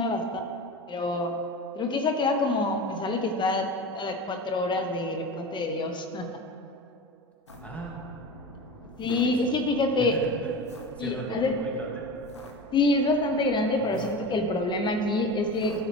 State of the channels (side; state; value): both; normal; correlation 0.29